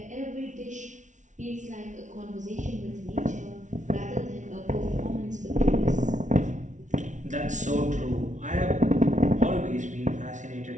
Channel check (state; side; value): late; left; 0.36 ms